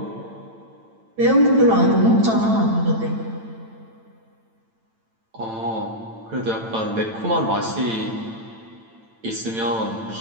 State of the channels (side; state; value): left; late; 9.0 ms